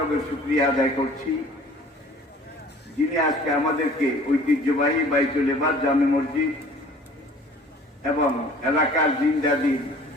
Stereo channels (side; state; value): both; normal; correlation 0.50